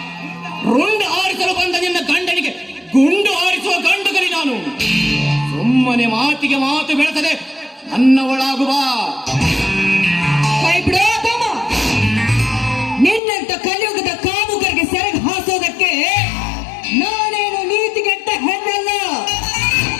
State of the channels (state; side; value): drops out; right; at 13.2 s